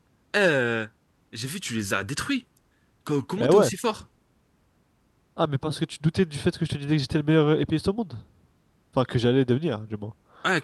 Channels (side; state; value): both; identical; correlation 1.00